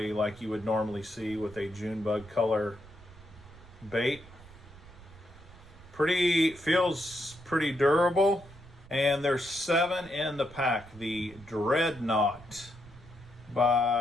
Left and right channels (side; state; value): right; noise; rumble, 20 dB below the sound